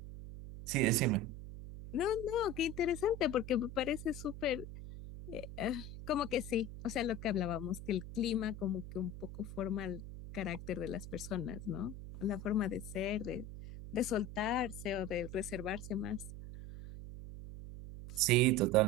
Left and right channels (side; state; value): right; noise; hum, 10 dB below the sound